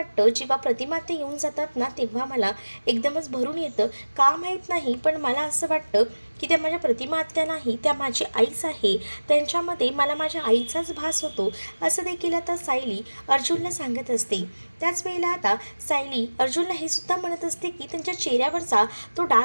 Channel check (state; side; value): inverted; both; correlation -1.00